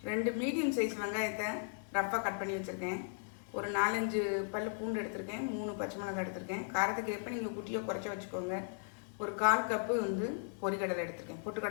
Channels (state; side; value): silent; right; digital silence